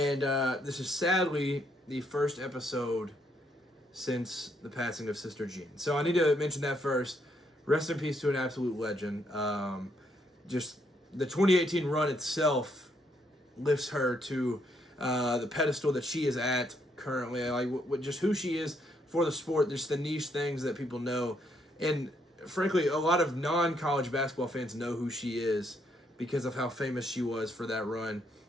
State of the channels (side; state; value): both; normal; correlation 0.73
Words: this is sadly the first episode since the passing of Sister Jean. So I need to mention that first. Rest in peace to an absolute legend. Just the 2018 run itself lifts her to the pedestal that she is at currently. Like just who she is for the sport, just the niche things that people know. And frankly, a lot of non-college basketball fans know who she is because of how famous she was for that run